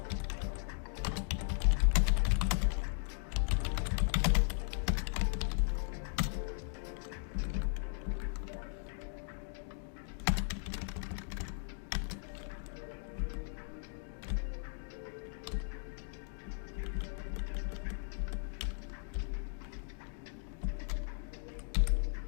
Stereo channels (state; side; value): silent; right; 53 dB below the other